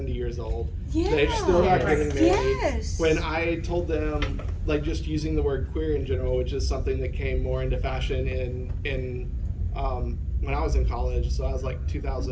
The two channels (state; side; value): identical; both; correlation 1.00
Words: years old. They're still not getting married. Yes. When I told them like just using the word queer in general, which is something that came more into fashion in when I was in college, so I was like